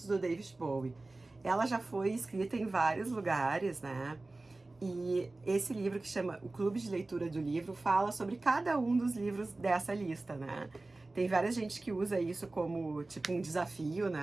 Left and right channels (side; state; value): left; quieter; 3.1 dB